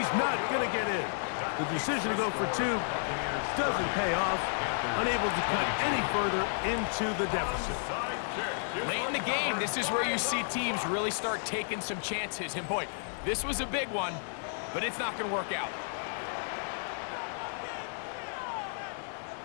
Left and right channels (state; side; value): silent; right; 56 dB below the other